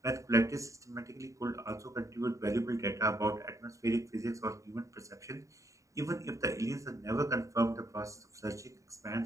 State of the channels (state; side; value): late; left; 0.16 ms